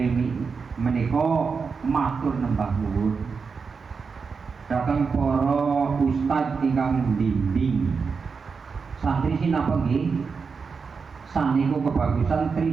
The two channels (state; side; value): quieter; left; 5.3 dB